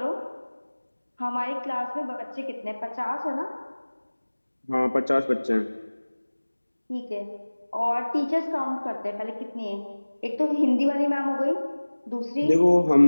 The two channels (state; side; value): inverted; both; correlation -1.00